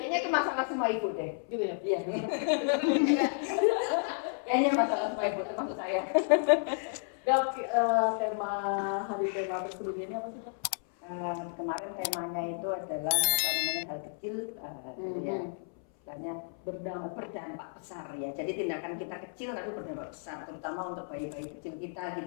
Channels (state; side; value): silent; right; 56 dB below the other